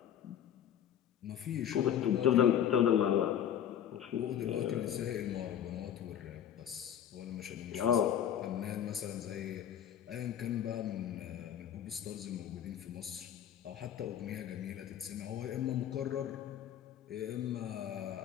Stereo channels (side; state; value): right; quieter; 9.8 dB